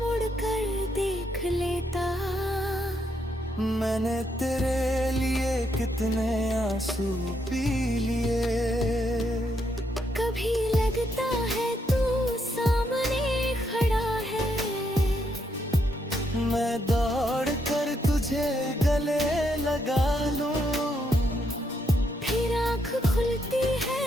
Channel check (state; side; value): normal; both; correlation 0.77